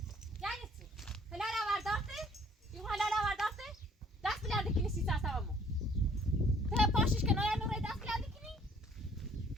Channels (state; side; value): normal; both; correlation 0.59